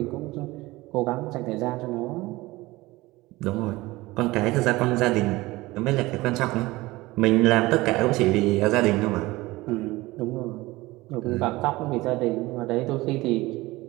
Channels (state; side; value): quieter; left; 20.0 dB